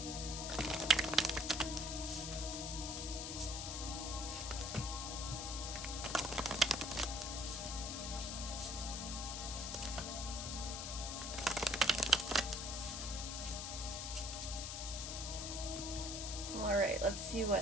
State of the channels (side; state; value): left; noise; hiss, 4 dB below the sound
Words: Alright, let's see